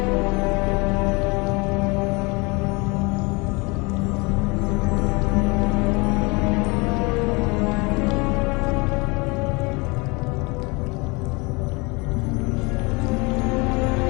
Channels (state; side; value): quieter; right; 27.2 dB